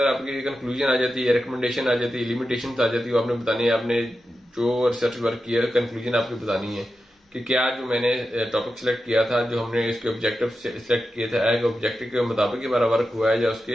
आपकी कंक्लूजन आ जाती है, रिकमेंडेशन आ जाती है, लिमिटेशन आ जाती है, वो आपने बतानी है। आपने जो रिसर्च वर्क किया कंक्लूजन आपकी बतानी है कि क्या जो मैंने टॉपिक सिलेक्ट किया था, जो हमने इसके ऑब्जेक्टिव सिलेक्ट किए थे, ऑब्जेक्टिव के मुताबिक हमारा वर्क हुआ है या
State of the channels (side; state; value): both; normal; correlation 0.90